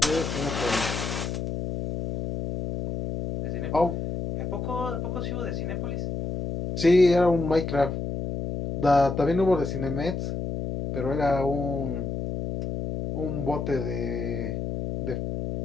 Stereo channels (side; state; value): left; noise; hum, 4 dB below the sound